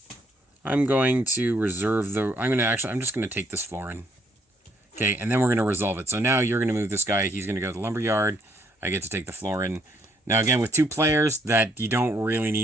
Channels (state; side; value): normal; both; correlation 0.69